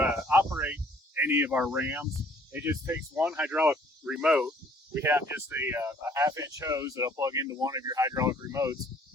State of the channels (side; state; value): both; normal; correlation 0.59